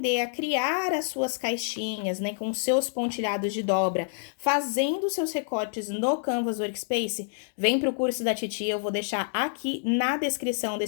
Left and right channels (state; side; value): silent; right; digital silence